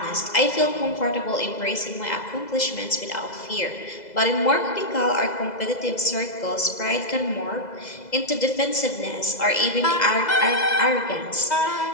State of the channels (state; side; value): late; right; 2.0 ms